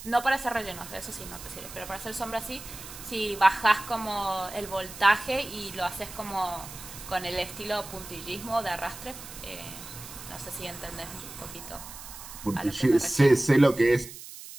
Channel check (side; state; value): right; noise; hiss, 13 dB below the sound